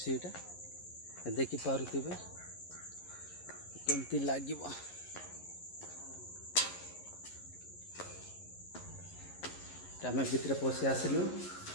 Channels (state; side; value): late; right; 11 ms